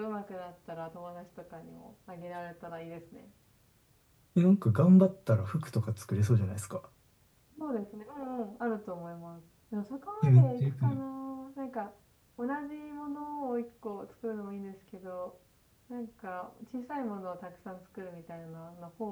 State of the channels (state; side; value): identical; both; correlation 1.00